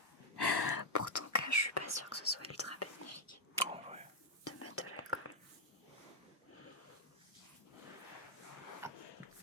Pour ton cas, je suis pas sûre que ce soit ultra bénéfique En vrai. de mettre de l'alcool.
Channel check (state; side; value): normal; both; correlation -0.02